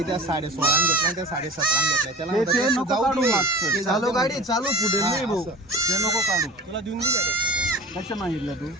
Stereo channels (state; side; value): normal; both; correlation 0.37